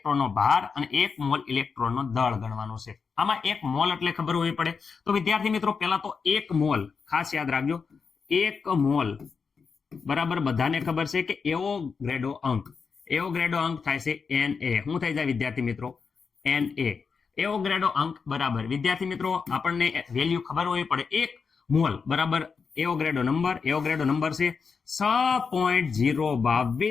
ભાર અને 1 મોલ ઇલેક્ટ્રોનનો દળ ગણવાનો છે. આમાં 1 મોલ એટલે ખબર હોવી પડે. તો વિદ્યાર્થી મિત્રો પહેલા તો 1 મોલ ખાસ યાદ રાખજો. 1 મોલ બરાબર બધાને ખબર છે કે એવોગ્રેડો અંક થાય છે Na. શું થઈ જાય વિદ્યાર્થી મિત્રો? Na. એવોગ્રેડો અંક બરાબર વિદ્યાર્થી મિત્રો આપણને વેલ્યુ ખબર હોવી પડે. 1 મોલ બરાબર એવોગ્રેડો નંબર છે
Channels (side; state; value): right; quieter; 5.5 dB